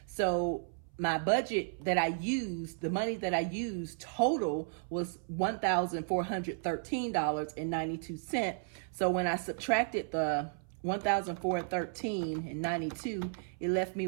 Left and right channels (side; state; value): left; silent; 55 dB below the other